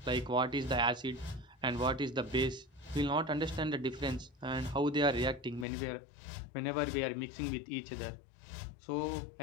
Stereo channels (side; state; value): right; drops out; at 5.7 s